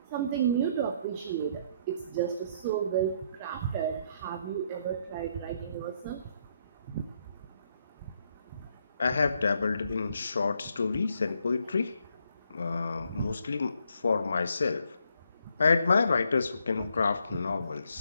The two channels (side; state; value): both; inverted; correlation -0.72